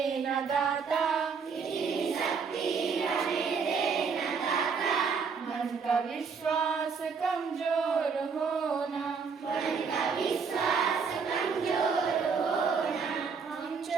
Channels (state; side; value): quieter; left; 5.6 dB